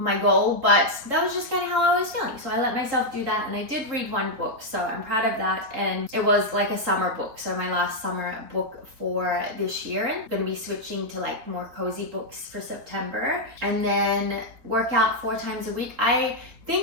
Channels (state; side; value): late; left; 3.9 ms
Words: goal, but that was just kind of how I was feeling. So I let myself do that, and I did read 1 book, so I'm proud of that. And it was a summer book, so my last summer book for this year. And I'm going to be switching to more cozy books for September. And then work out 4 times a week. I